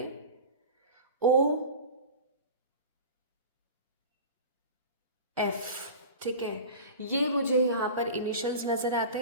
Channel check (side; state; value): both; inverted; correlation -0.35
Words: OF। ठीक है, ये मुझे यहाँ पर इनिशियल्स नजर आते